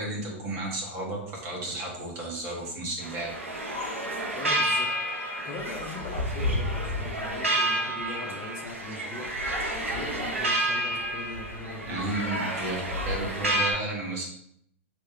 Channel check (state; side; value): normal; both; correlation 0.18